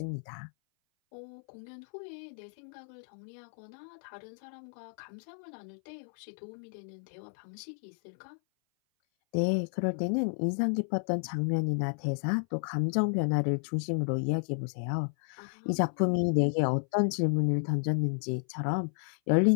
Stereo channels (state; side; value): silent; right; 56 dB below the other